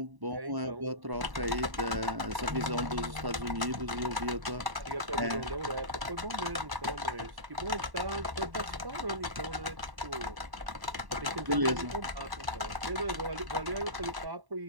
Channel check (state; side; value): late; left; 1.1 ms